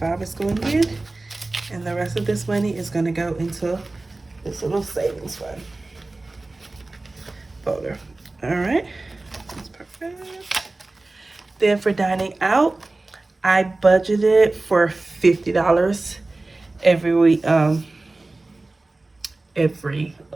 is going in, and the rest of this money is going to go into this little savings fund folder. All right, that's perfect. Then for dining out, I budgeted for $50 every week. What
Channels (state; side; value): quieter; left; 3.1 dB